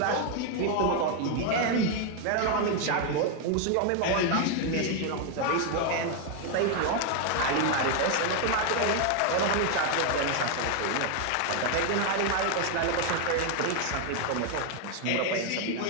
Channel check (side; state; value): both; different; correlation 0.00